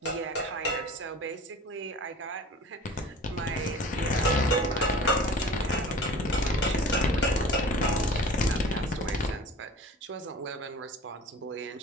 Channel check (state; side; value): normal; both; correlation 0.42